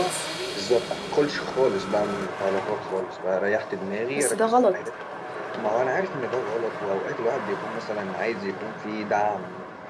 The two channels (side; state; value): both; identical; correlation 1.00